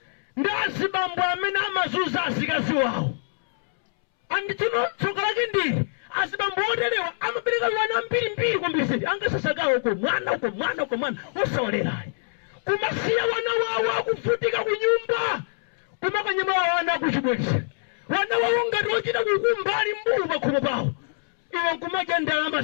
ndi azibambo amene amazunza azikazi wawo andituno tsoka lake ndili azibambo oterewa amapereka wana mbirimbiri kumbisiri angasasagawo uko mwana osawalerayi kumasiya wana wawo akufutika kunyumba kumakanyama wana kuchibwezi wana wawo ngati ochita kukumbali mbulu pakhomo pawo iwe nkumadya ndalama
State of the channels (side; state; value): right; silent; 62 dB below the other